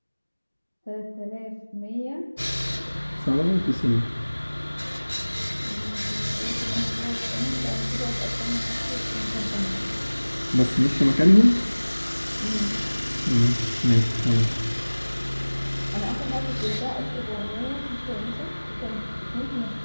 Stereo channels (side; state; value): both; inverted; correlation -1.00